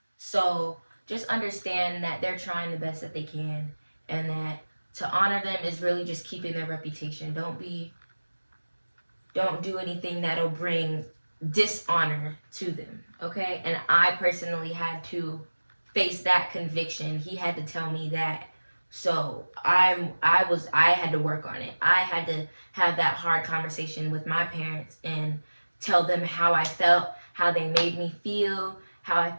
So just understand that they're trying the best that they can, and that to honor them is really just keeping their reputation. Don't do anything that'll bring dishonor to them, okay? And I personally had to face that conviction. He had to tell me that. So I had to work on it. I had to have that hard conversation with my parents and tell them how I felt, how they made me feel, how I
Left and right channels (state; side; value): inverted; both; correlation -1.00